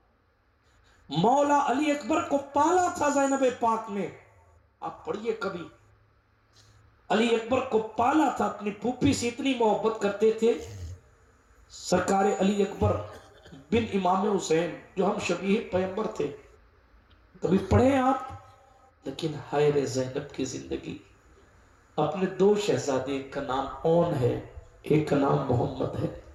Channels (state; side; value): identical; both; correlation 1.00